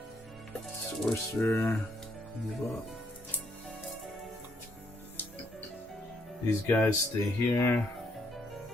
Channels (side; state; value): both; normal; correlation 0.72